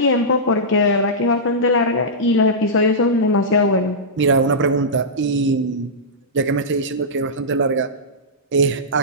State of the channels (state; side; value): normal; both; correlation -0.14